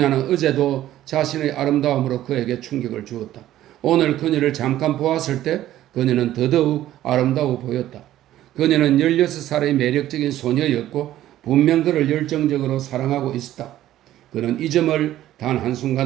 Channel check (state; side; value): quieter; left; 13.4 dB